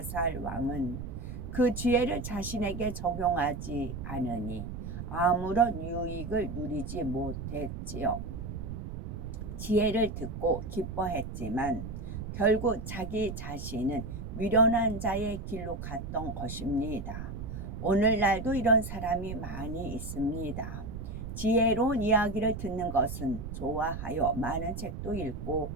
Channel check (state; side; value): noise; right; rumble, 7 dB below the sound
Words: 왕은 그 지혜를 자신에게 적용하지 않으니 아무런 유익을 누리지 못했지요. 지혜를 듣고 기뻐했지만 결국 자기 자신은 미련한 자의 길로 갔던 것입니다. 오늘날도 이런 사람이 많이 있습니다. 지혜로운 이야기를 듣는 것은 좋아하여 많은 책도 읽고